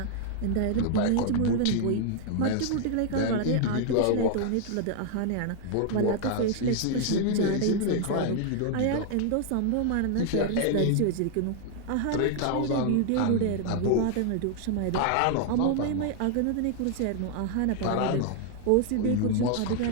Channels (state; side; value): different; both; correlation 0.00